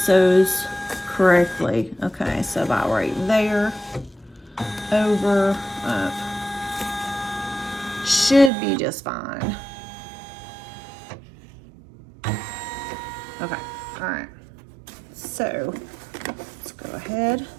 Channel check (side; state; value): left; drops out; at 8.5 s